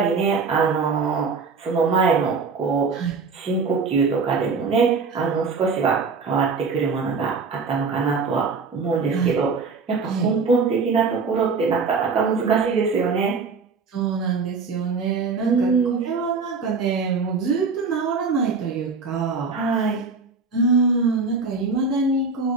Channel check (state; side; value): quieter; left; 4.7 dB